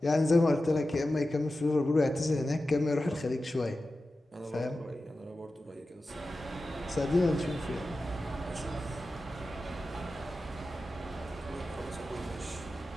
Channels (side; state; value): both; normal; correlation 0.93